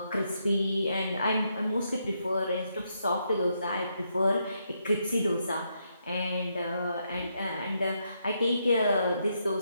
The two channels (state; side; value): inverted; both; correlation -0.79